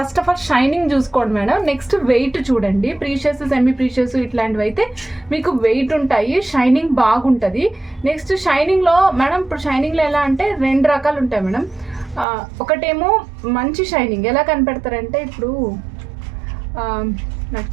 ఆఫ్ ఆల్ షైనింగ్ చూసుకోండి మేడం. నెక్స్ట్ వెయిట్ చూడండి. ప్రీషియస్ సెమీ ప్రీషియస్ ఇట్లాంటివి అయితే మీకు వెయిట్ ఉంటాయి, షైనింగ్ బాగుంటుంది. నెక్స్ట్ షైనింగ్లో మేడం, ఇప్పుడు షైనింగ్లో ఎలా అంటే 2 రకాలు ఉంటాయి మేడం. ఒకటేమో మంచి షైనింగ్. ఎలా కనిపెడతారంటే, ఇప్పుడు నాకు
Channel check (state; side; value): drops out; left; at 12.2 s